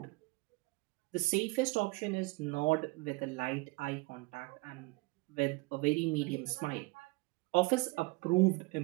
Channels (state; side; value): quieter; left; 25.2 dB